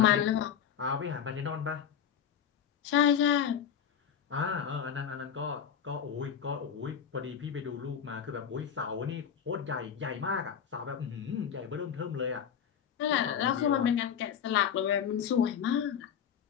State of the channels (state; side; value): quieter; right; 8.2 dB